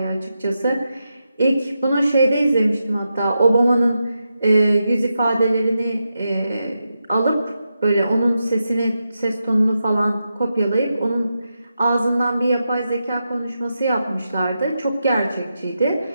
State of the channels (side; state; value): both; inverted; correlation -0.87